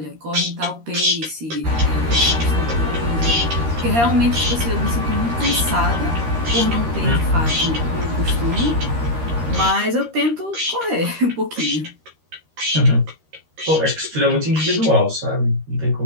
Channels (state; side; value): late; left; 13 ms